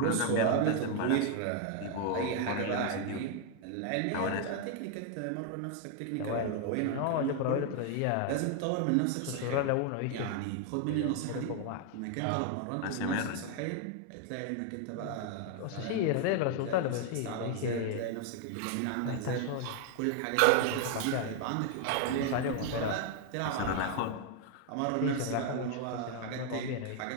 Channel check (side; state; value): both; different; correlation 0.00